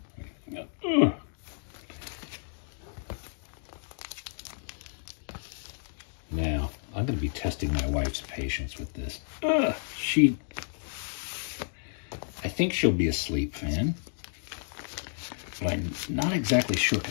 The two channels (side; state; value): right; silent; digital silence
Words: Now, I'm going to be testing my wife's patience with this. I think she'll be a Sleep fan. But I'm not exactly sure